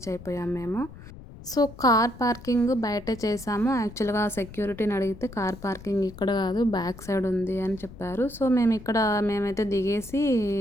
అయిపోయాం మేము. సో కార్ పార్కింగ్ బయటే చేసాము. యాక్చువల్గా సెక్యూరిటీని అడిగితే కార్ పార్కింగ్ ఇక్కడ కాదు, బ్యాక్ సైడ్ ఉంది అని చెప్పారు. సో మేమైతే దిగేసి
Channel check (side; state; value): left; noise; rumble, 16 dB below the sound